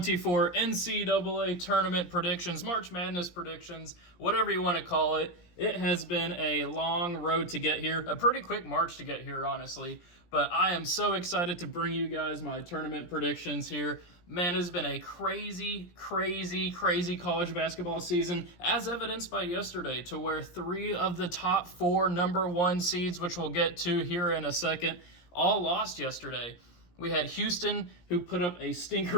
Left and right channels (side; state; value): right; late; 17 ms